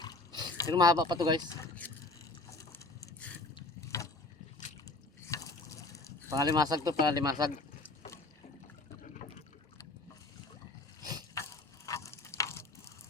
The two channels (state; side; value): quieter; right; 3.1 dB